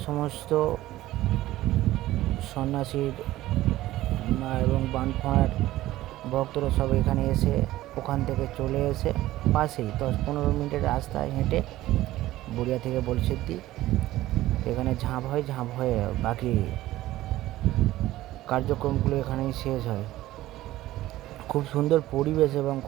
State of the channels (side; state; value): left; quieter; 15.7 dB